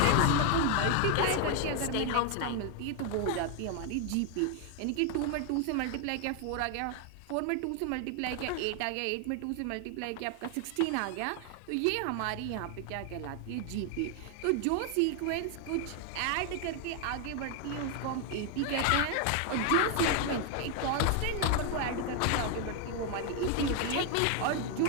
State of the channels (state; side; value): different; both; correlation 0.00